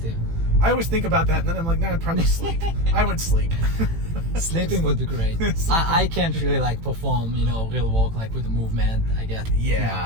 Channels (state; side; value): late; left; 18 ms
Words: I always think about that, and then I'm like, nah, I'd probably sleep. I would sleep. Sleeping would be great. I can't really like perform, you know, real walk like with the movement. I get,